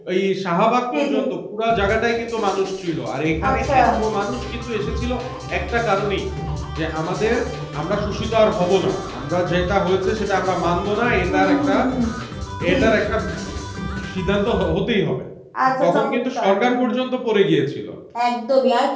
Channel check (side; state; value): both; identical; correlation 1.00